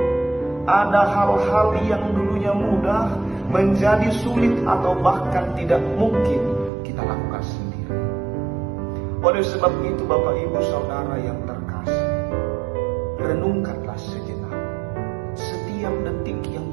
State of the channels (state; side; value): drops out; left; at 6.7 s